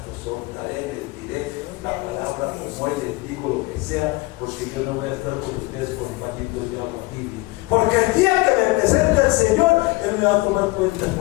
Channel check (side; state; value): right; quieter; 23.0 dB